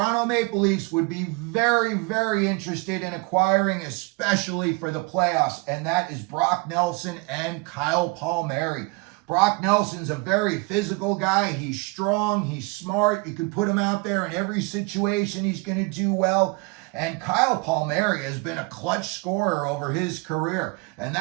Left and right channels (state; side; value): quieter; left; 27.3 dB